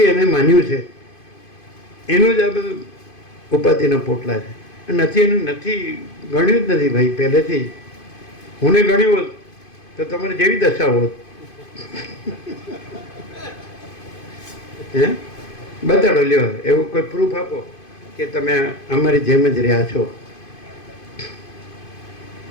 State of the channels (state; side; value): late; right; 2.5 ms